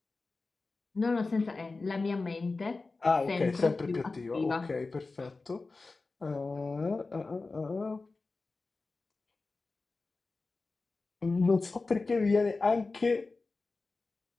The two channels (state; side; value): quieter; right; 3.7 dB